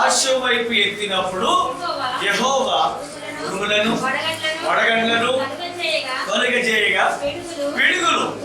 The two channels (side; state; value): both; identical; correlation 1.00